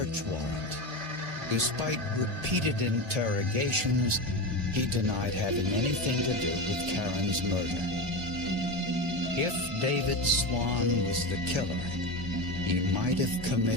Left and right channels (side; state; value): left; late; 2.1 ms